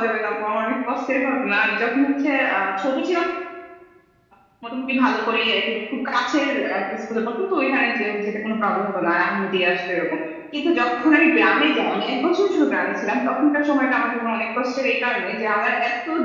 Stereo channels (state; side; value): identical; both; correlation 1.00